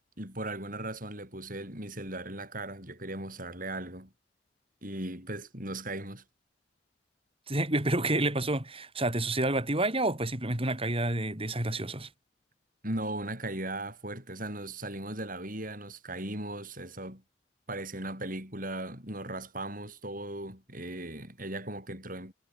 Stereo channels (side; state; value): both; normal; correlation 0.42